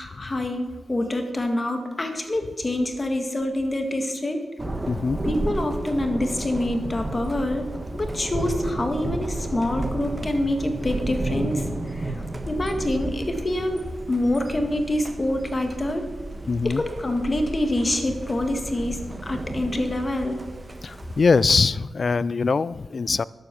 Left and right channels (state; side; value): normal; both; correlation 0.93